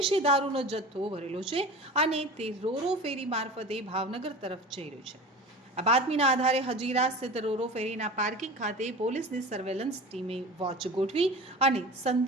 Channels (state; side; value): normal; both; correlation 0.35